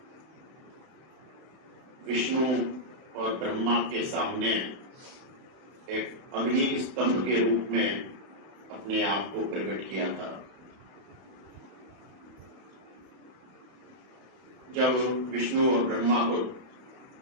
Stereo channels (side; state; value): left; late; 31 ms